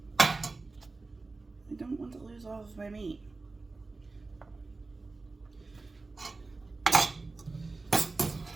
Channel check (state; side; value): quieter; left; 3.6 dB